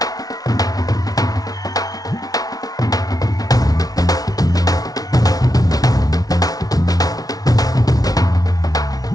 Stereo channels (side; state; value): right; late; 0.18 ms